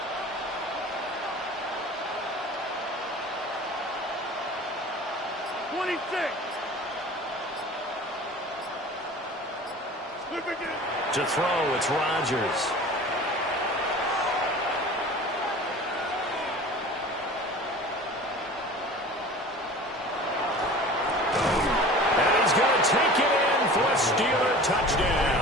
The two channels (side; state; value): both; normal; correlation 0.40